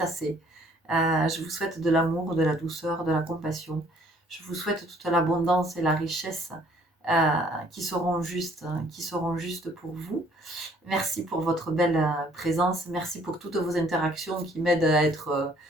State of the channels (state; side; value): normal; both; correlation 0.60